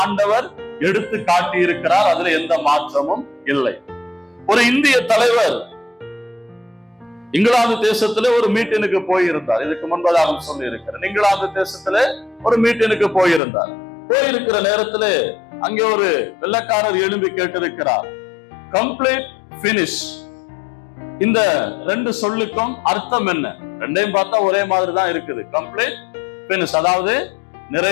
ஆண்டவர் எடுத்து காட்டி இருக்கிறார். அதுல எந்த மாற்றமும் இல்லை. ஒரு இந்திய தலைவர் இங்கிலாந்து தேசத்துல ஒரு மீட்டினுக்கு போயிருந்தார். இதுக்கு முன்பதாக சொல்லி இருக்கிறேன். இங்கிலாந்து தேசத்துல ஒரு மீட்டினுக்கு போயிருந்தார். போயிருக்கிற நேரத்துல அங்கே ஒரு வெள்ளைக்காரர் எழும்பி கேட்டிருக்கிறார், கம்ப்ளீட் பினிஷ். இந்த ரெண்டு சொல்லுக்கும் அர்த்தம் என்ன? ரெண்டையும் பார்த்தா ஒரே மாதிரி தான் இருக்குது. கம்ப்ளீட் பினிஷ், அதாவது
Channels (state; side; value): drops out; right; at 13.4 s